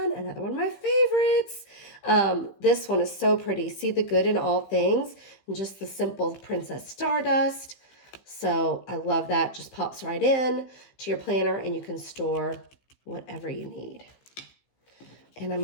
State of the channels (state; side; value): late; right; 15 ms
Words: another one of my favorites. This one is so pretty. See the good in all things, and just the simple Princess Stardust. So I love that. Just pops right in to your planner, and you can store whatever you need. And I